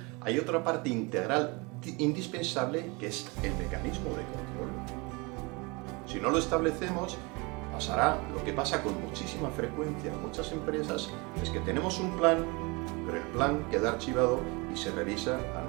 hay otra parte integral indispensable que es el mecanismo de control. Si no lo establecemos, pasará lo que pasa con muchísima frecuencia en muchas empresas, es que tenemos un plan, pero el plan queda archivado y se revisa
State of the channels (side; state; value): left; quieter; 27.5 dB